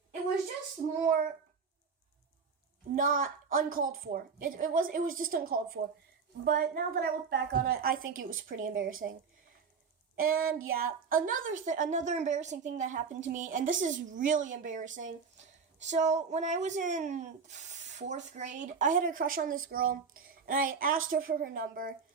not uncalled for. It was just uncalled for. But now that I look back on it, I think it was pretty embarrassing. And yeah, another embarrassing thing that happened to me, and this is really embarrassing. So when I was in 4th grade, I had a crush on this girl, and I asked her for her number,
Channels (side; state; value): left; quieter; 5.6 dB